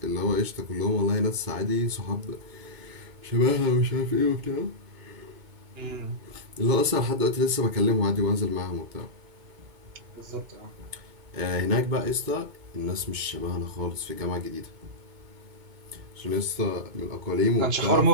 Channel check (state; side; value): late; left; 2.2 ms